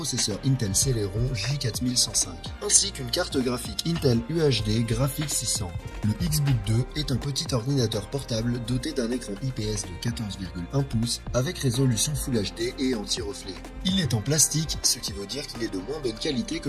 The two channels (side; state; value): both; identical; correlation 1.00